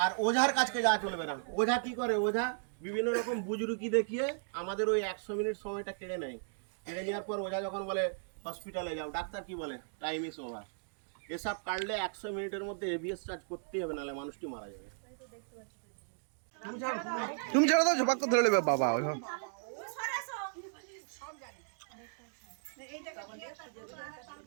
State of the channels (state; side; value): silent; left; digital silence